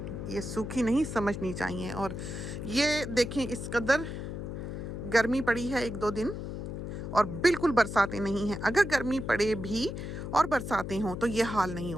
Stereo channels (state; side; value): noise; left; hum, 6 dB below the sound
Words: ये सूखी नहीं समझनी चाहिए। और ये देखें, इस कदर गर्मी पड़ी है एक दो दिन और बिल्कुल बरसातें नहीं हैं। अगर गर्मी पड़े भी और बरसातें हों तो ये हाल नहीं